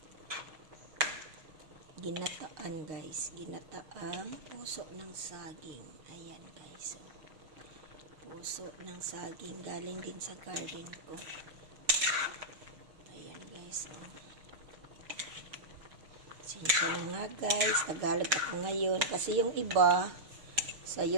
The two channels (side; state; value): left; late; 6.6 ms